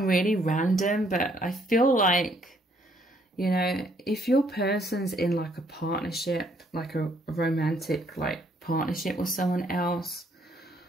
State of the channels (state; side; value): normal; both; correlation 0.67